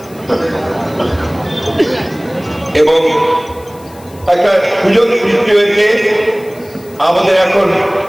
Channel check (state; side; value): noise; left; hiss, 24 dB below the sound